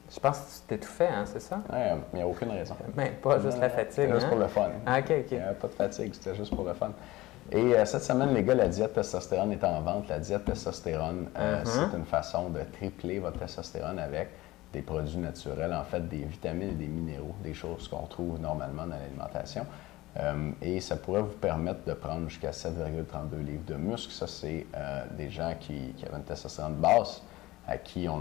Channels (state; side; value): quieter; right; 18.5 dB